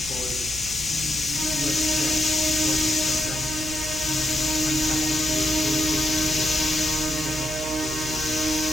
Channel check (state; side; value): noise; right; hum, 11 dB below the sound